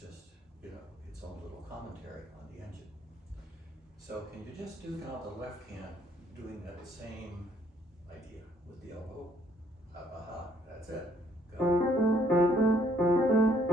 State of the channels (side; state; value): both; normal; correlation 0.65